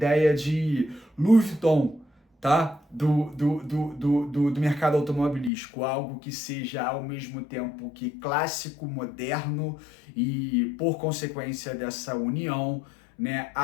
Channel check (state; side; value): drops out; right; at 5.5 s